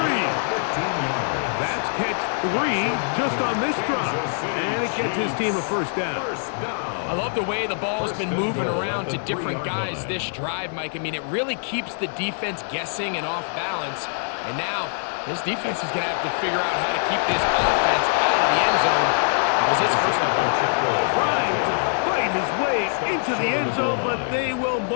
15 yards. That's catch 3 just on this drive. And it gets his team a first down. I love the way the ball's been moving around to different guys this drive, Mike. I mean, it really keeps the defense guessing and off balance. And now this defense is going to have to figure out how to keep this offense out of the end zone because it's first and goal. Trying to fight his way into the end zone, but they will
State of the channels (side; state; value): right; silent; digital silence